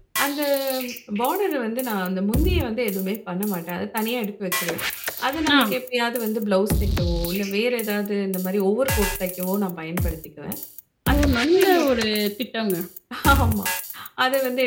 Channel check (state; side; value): identical; both; correlation 1.00